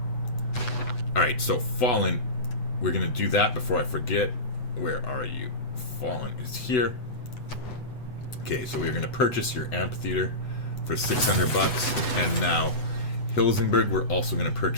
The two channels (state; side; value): late; right; 8.0 ms